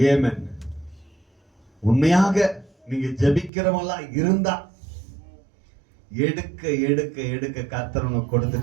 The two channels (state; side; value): drops out; left; at 3.5 s